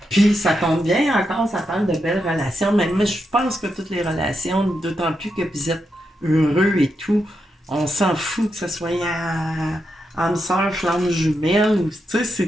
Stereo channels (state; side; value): normal; both; correlation 0.84